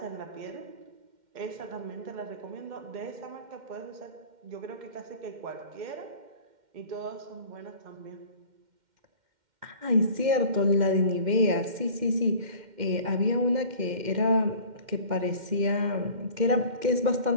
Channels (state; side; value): late; left; 2.1 ms